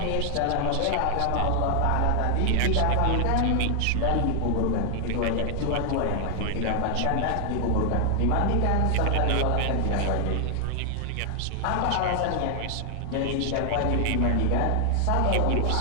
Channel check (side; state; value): both; different; correlation 0.00